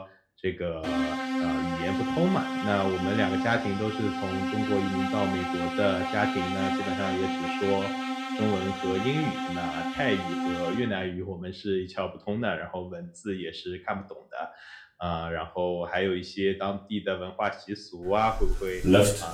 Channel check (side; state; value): both; identical; correlation 1.00